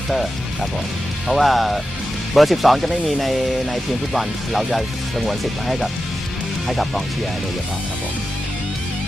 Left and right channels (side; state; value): both; normal; correlation 0.91